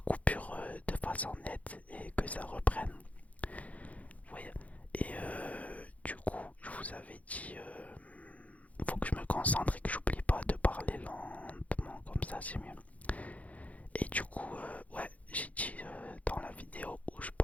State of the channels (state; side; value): late; right; 0.069 ms